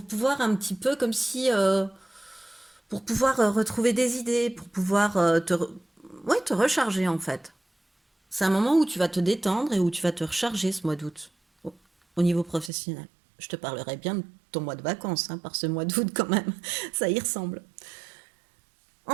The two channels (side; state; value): left; drops out; at 12.7 s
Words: pouvoir un petit peu comme si pour pouvoir retrouver des idées, pour pouvoir ouais, te recharger en fait. C'est un moment où tu vas te détendre et où tu vas te recharger ce mois d'août au niveau professionnel. Je te parlerai bien de ton mois de vacances, hein, par ce mois d'août quand même. Ça y ressemble.